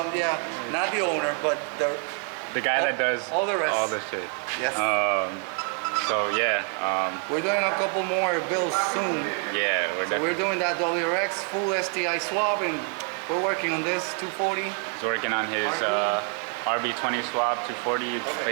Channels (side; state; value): left; quieter; 38.7 dB